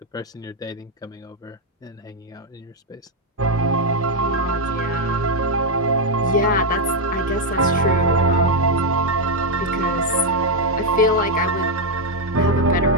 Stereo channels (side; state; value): both; normal; correlation 0.01